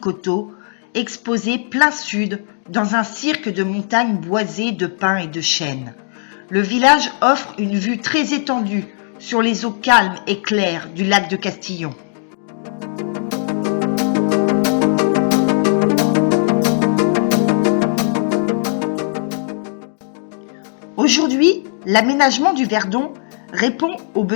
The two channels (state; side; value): silent; right; 59 dB below the other